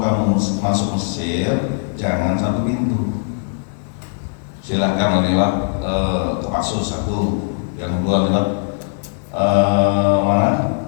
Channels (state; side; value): silent; right; 66 dB below the other